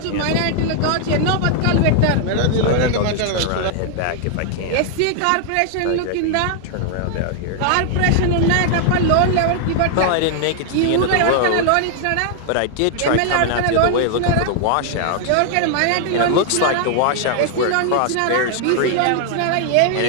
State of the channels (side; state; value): both; different; correlation 0.00